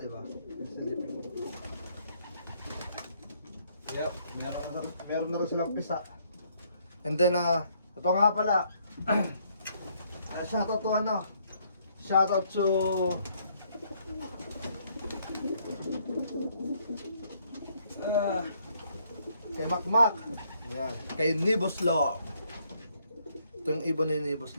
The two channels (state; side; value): inverted; both; correlation -0.69